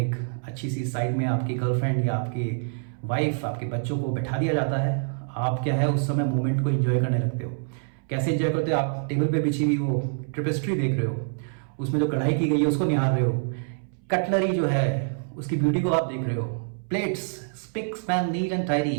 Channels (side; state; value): left; silent; 61 dB below the other